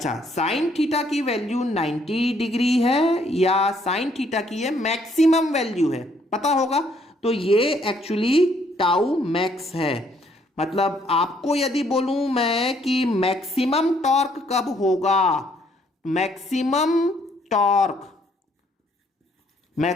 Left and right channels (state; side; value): normal; both; correlation 0.67